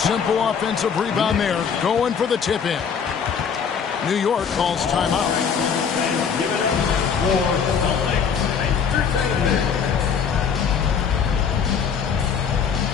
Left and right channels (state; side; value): quieter; right; 6.8 dB